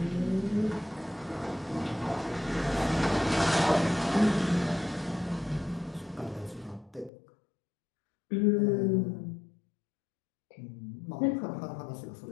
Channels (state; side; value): drops out; right; at 7.1 s